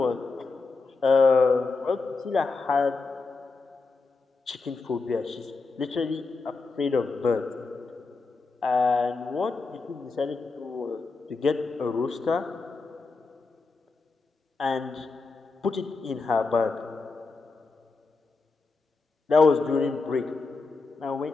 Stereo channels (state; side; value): quieter; right; 4.0 dB